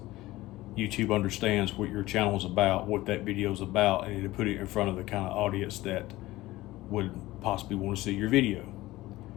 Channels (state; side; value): quieter; right; 17.9 dB